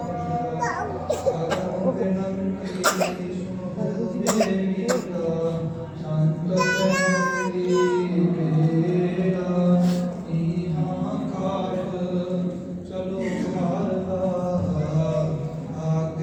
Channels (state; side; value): identical; both; correlation 1.00